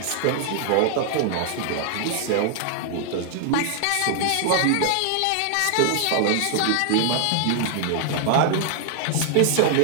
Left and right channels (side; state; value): both; different; correlation 0.00